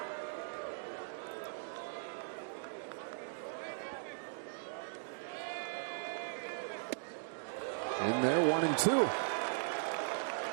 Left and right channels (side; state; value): left; silent; digital silence